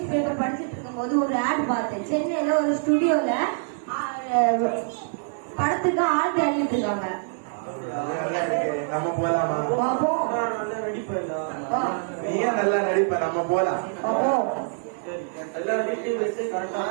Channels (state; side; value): silent; left; digital silence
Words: பேப்பர் படிச்சுட்டு இருக்கும் போது ஒரு ஆட் பார்த்தேன். சென்னையில ஒரு ஸ்டுடியோல படத்துக்கு ஆள் தேடிட்டு இருக்காங்க. நம்ம போலாமா? நீயே நல்லா நடிப்ப, நம்ம போலாம்.